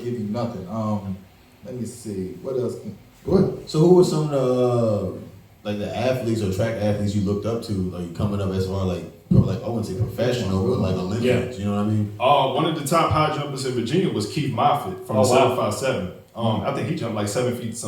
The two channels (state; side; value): identical; both; correlation 1.00